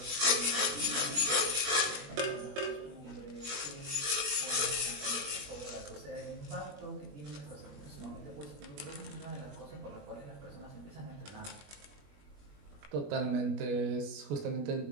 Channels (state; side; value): late; left; 21 ms